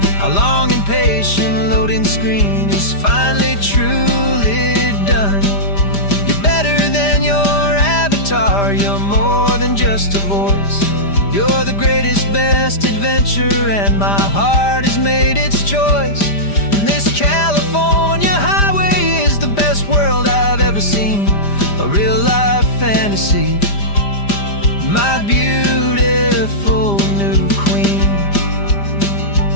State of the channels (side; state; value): right; late; 5.0 ms